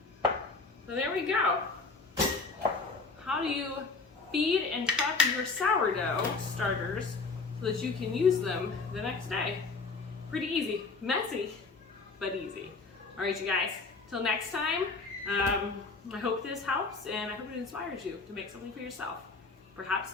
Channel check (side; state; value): right; quieter; 4.1 dB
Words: So there we go. How do you feed and prep your sourdough starters so that you can use them the next day? Pretty easy, messy, but easy. All right, you guys, till next time, I hope this helps and I hope it inspires you to make something for yourself. Perhaps